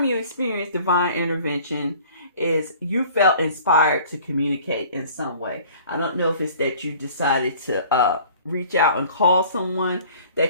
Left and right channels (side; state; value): both; inverted; correlation -0.50